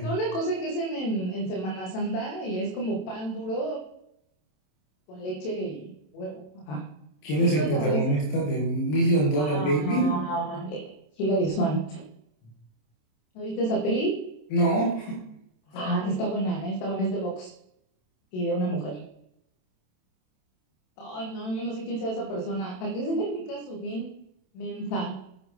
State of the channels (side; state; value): right; late; 27 ms